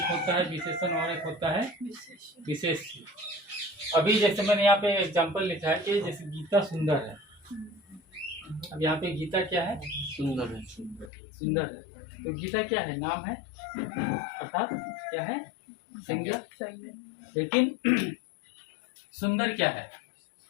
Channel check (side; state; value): right; drops out; at 11.1 s